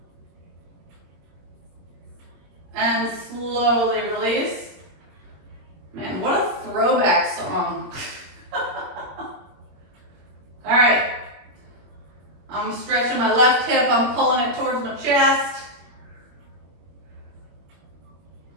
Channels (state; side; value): late; left; 21 ms